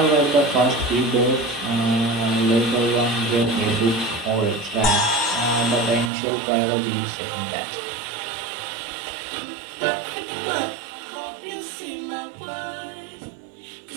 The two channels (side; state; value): left; drops out; at 6.1 s